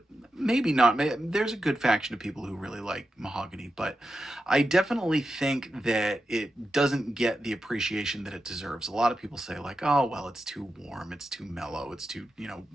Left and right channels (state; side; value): normal; both; correlation 0.90